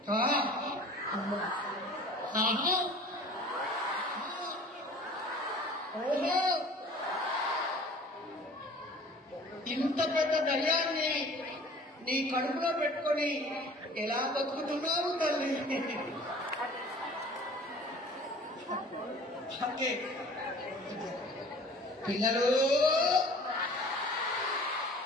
ఓహో, ఇంత పెద్ద దయ్యాన్ని నీ కడుపులో పెట్టుకొని ఎలా బతుకుతున్నావు తల్లి? ఓకే పిల్లలు,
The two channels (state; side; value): normal; both; correlation 0.47